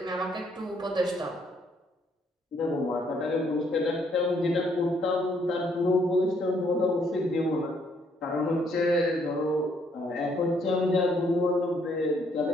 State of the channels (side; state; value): both; normal; correlation 0.69